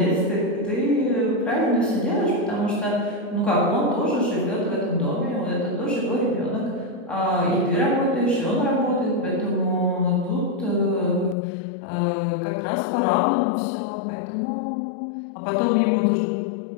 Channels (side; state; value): right; drops out; at 11.4 s